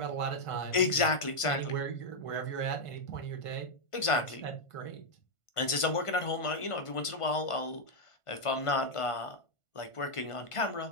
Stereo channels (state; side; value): late; right; 1.5 ms